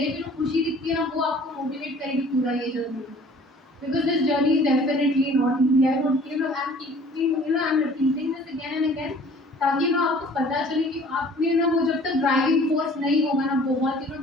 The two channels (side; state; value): both; normal; correlation 0.51